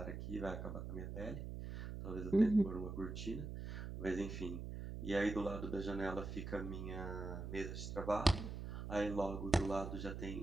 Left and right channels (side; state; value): right; noise; hum, 6 dB below the sound